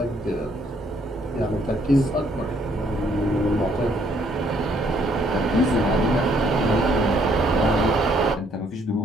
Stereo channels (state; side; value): normal; both; correlation 0.67